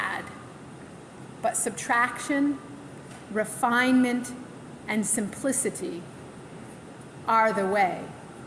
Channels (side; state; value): both; identical; correlation 1.00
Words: but subtraction, refinement, and simplicity are the way.